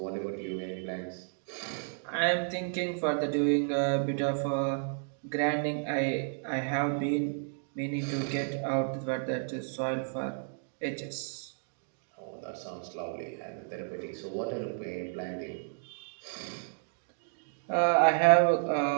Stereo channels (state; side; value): silent; left; digital silence